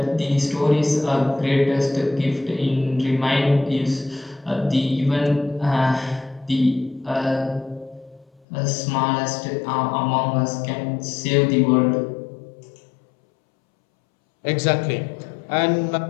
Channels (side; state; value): right; drops out; at 8.4 s